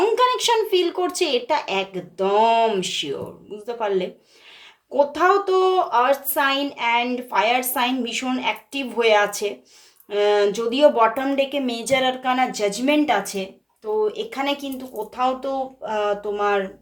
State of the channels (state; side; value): identical; both; correlation 1.00